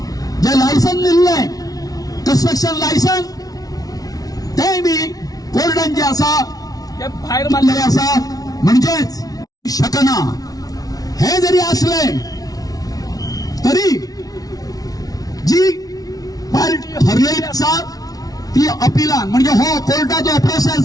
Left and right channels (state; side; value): late; right; 0.18 ms